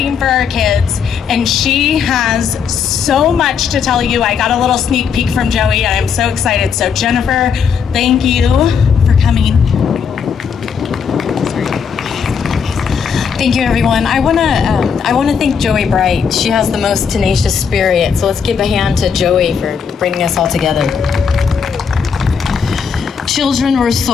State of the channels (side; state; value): right; quieter; 6.6 dB